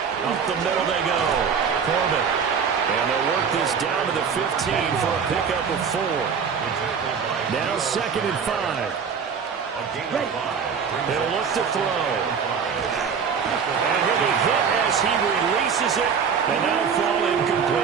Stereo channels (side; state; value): left; quieter; 6.5 dB